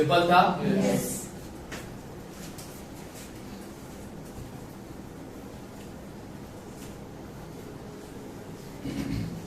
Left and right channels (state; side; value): identical; both; correlation 1.00